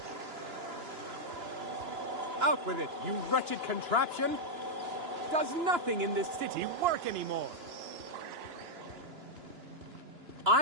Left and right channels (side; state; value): left; late; 2.9 ms